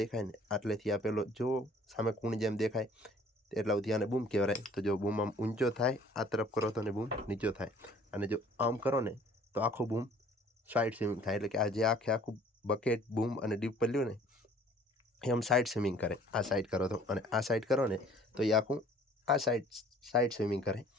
ને આટલેથી આ પેલો જો સામે કૂણ જેમ દેખાય એટલા સુધી આને બૂમ કહેવાય. તો જો બૂમ આમ ઊંચો થાય આ તરફ કરો તો ને બૂમ નીચો થાય, અને જો આમ કરો ને તો આખું બૂમ સાઈડ સ્વિમિંગ થાય. એટલે કે આ જે આખું બકેટ બૂમ અને ડીપર લ્યો ને એ આમ સાઈડ સ્વિમિંગ કરે. આ સાઈડ કરો તો અને આ સાઈડ કરો ને તો એ આખું આ સાઈડ સ્વિમિંગ કરે.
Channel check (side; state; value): both; normal; correlation 0.54